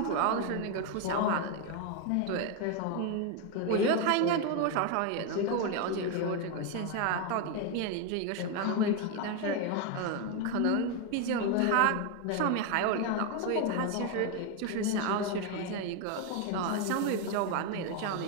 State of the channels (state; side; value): different; both; correlation 0.01